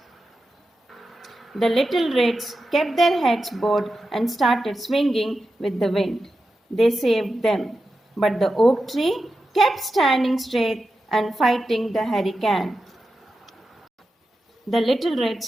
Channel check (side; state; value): both; normal; correlation 0.90